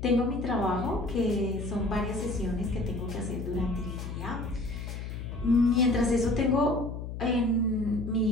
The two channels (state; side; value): noise; left; hum, 7 dB below the sound